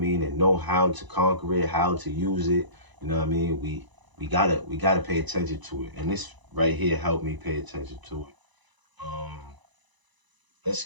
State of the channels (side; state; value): left; late; 1.0 ms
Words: and know how to conquer it, how to use it, you know what I mean, we gotta pay attention to it. And this right here helped me pay attention to it. Um, let's